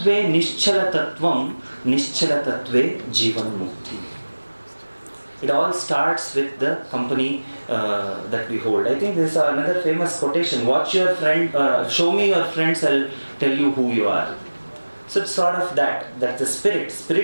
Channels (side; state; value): both; inverted; correlation -1.00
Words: nischalatatvam, nischalatatve jivan mukti. It all starts with the company that we hold. I think this is another famous quotation. Watch your friend, show me your friends, I'll tell you who you are. So it's sort of that the